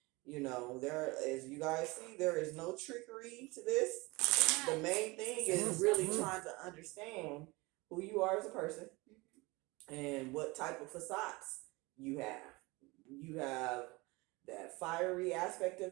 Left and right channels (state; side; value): quieter; left; 23.7 dB